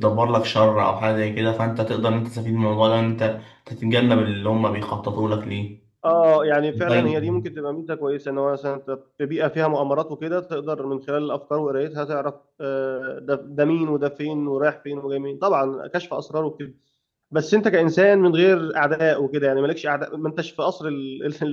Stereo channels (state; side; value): identical; both; correlation 1.00